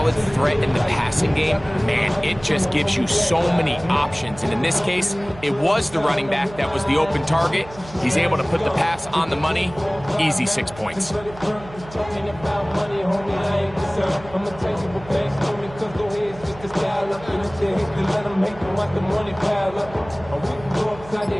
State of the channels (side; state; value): right; noise; hum, 18 dB below the sound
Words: threat in the passing game, man, it just gives you so many options. And in this case, it was the running back that was the open target. He's able to put the pass on the money. Easy 6 points.